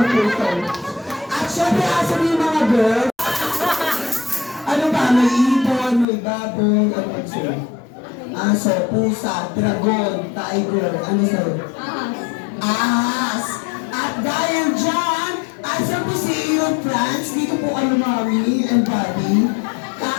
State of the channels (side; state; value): right; drops out; at 6.1 s